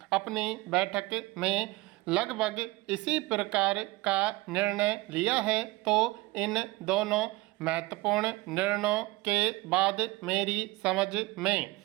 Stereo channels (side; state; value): left; quieter; 21.1 dB